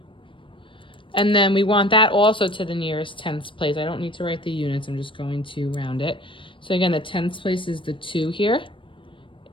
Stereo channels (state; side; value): late; right; 0.25 ms